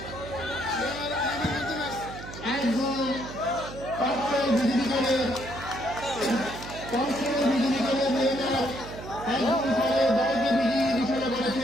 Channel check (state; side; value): noise; right; hum, 12 dB below the sound